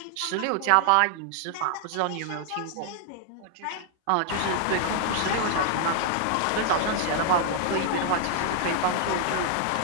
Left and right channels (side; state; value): both; different; correlation -0.01